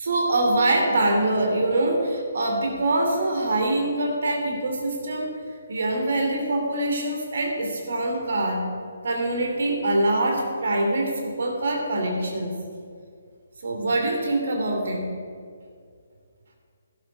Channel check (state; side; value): inverted; both; correlation -0.77